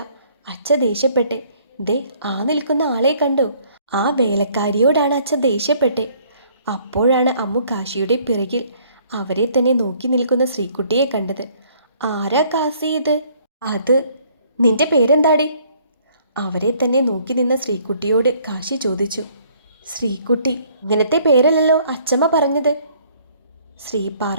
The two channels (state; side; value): inverted; both; correlation -0.62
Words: അച്ഛ ദേഷ്യപ്പെട്ടെ. ദേ, ആ നിൽക്കുന്ന ആളെ കണ്ടോ? ആ വേലക്കാരിയോടാണ് അച്ഛ ദേഷ്യപ്പെട്ടെ. അപ്പോഴാണ് അമ്മു കാശിയുടെ പിറകിൽ അവരെ തന്നെ നോക്കി നിൽക്കുന്ന ശ്രീകുട്ടിയെ കണ്ടത്. ആരാ കാസി ഇത്? അത് നിന്റെ പേരെന്താടി? അവരെ തന്നെ നോക്കി നിന്ന ശ്രീകുട്ടിയോട് കാശി ചോദിച്ചു. ശ്രീകുട്ടി, ഇങ്ങനത്തെ പേരല്ലല്ലോ അച്ചമ്മ പറഞ്ഞത്. ശ്രീ